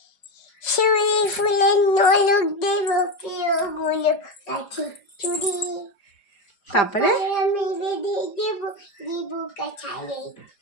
শিউলি ফুলের নলক দেব প্রিয় গুলো কাছে চুরি। তারপরে আমি বেঁধে দেব দিব কাছালে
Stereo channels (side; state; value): right; late; 5.0 ms